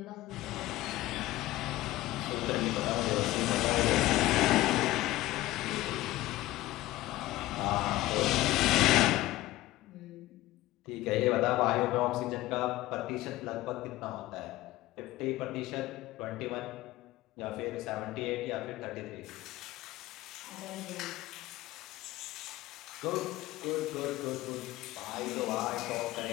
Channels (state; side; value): quieter; right; 17.1 dB